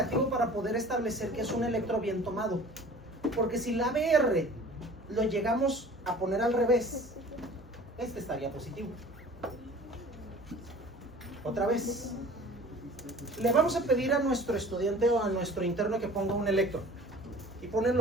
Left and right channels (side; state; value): both; normal; correlation 0.45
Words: para poder establecer que es un electro bien tomado. Porque si la ABR lo llegamos a poner al revés, este estaría positivo. Otra vez. Le vamos a pedir a nuestro estudiante o a nuestro interno que ponga un electro. Y ponen